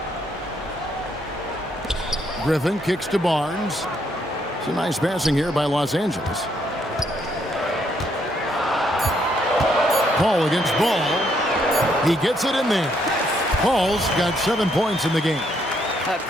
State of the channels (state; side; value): normal; both; correlation 0.72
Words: Griffin kicks to Barnes. Some nice passing here by Los Angeles. Paul against Ball. He gets it in there. Paul's got 7 points in the game.